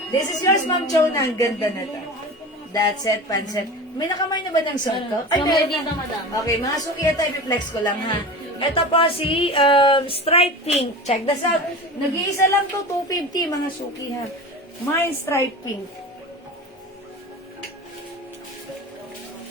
This is yours, Ma'am Chona. Ang ganda na to. That's it, pansit. May nakamay na ba ng suot ko? Ay, meron na. Okay, mga suki ito, i-flex ko lang, ha. Ito po si Stripe Pink. Check this out. Nag-iisa lang to, 250, mga suki, ha. Mine Stripe Pink.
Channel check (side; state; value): both; normal; correlation 0.31